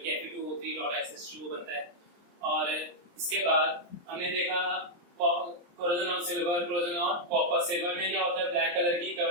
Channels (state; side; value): late; left; 23 ms